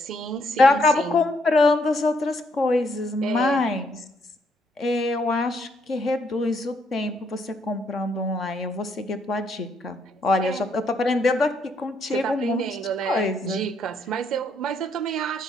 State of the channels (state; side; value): normal; both; correlation 0.73